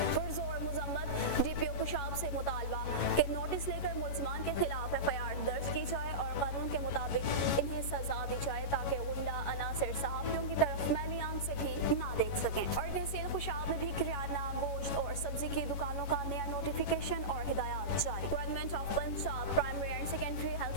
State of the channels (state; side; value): late; right; 11 ms